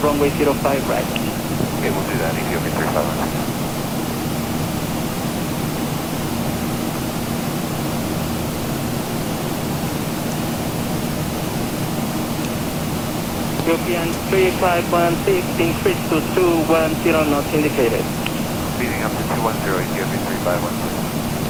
runway 05 right. Okay, we'll do that, Ethiopian 3516. European 3516, increase to 210 knots indicated. Speeding up to 210, Ethiopian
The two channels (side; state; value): both; identical; correlation 1.00